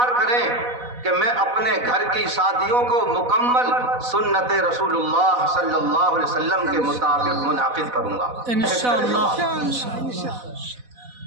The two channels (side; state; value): left; late; 4.1 ms